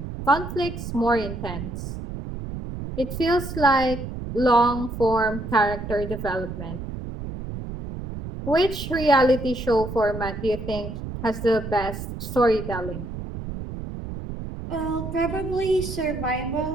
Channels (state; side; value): noise; right; rumble, 8 dB below the sound